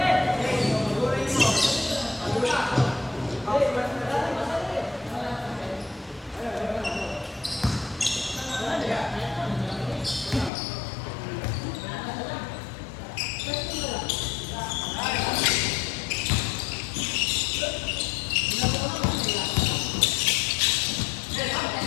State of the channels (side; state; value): right; drops out; at 10.5 s